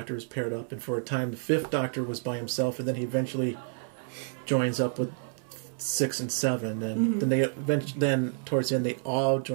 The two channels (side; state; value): left; silent; 58 dB below the other